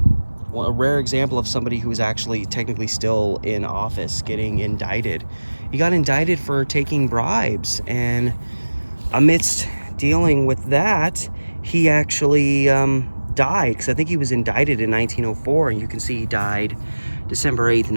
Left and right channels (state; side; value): inverted; both; correlation -1.00